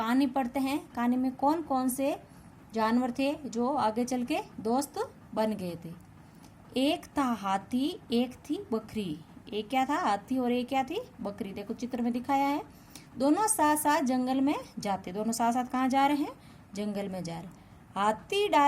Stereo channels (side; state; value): both; identical; correlation 1.00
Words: पढ़ते हैं। कहानी में कौन कौन से जानवर थे जो आगे चल के दोस्त बन गए थे? एक था हाथी, एक थी बकरी। एक क्या था? हाथी, और एक क्या थी? बकरी। देखो चित्र में दिखाया है। दोनों साथ साथ जंगल में जाते। दोनों साथ साथ कहाँ जा रहे हैं? जंगल में जा रहे। हाथी